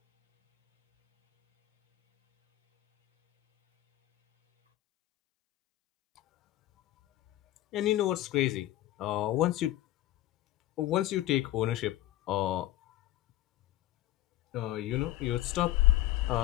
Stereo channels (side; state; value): right; quieter; 15.3 dB